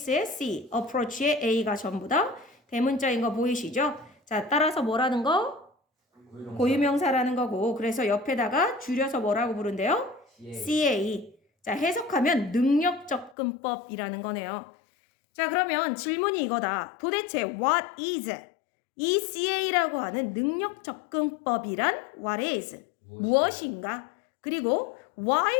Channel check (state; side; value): drops out; right; at 13.4 s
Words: C, approach의 A가 전부 다 대문자인 거 보이시죠? 자, 따라서 뭐라는 거? 고유명사라는 거고, 그래서 옆에다가 줄여서 뭐라고 부른대요? CA. 자, 해석하면 능력접근법이라는 거네요. 자, 그러면 질문이 이거다. 도대체 what is 이 CA라고 하는 능력접근법이란 what is 무엇인가? 그리고 why